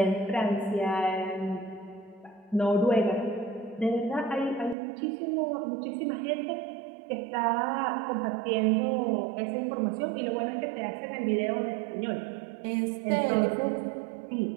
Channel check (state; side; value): drops out; left; at 4.8 s